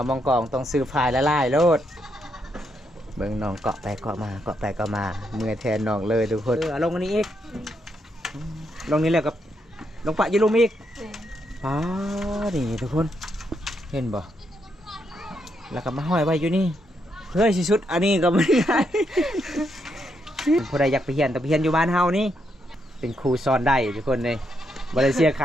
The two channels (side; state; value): both; normal; correlation 0.79